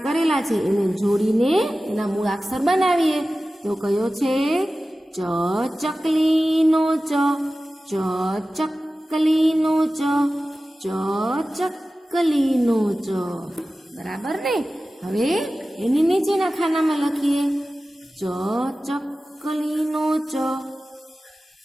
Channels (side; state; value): both; normal; correlation 0.95